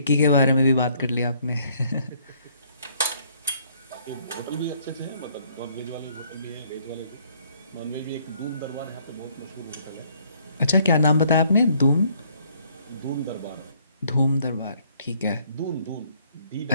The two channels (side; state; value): both; inverted; correlation -0.65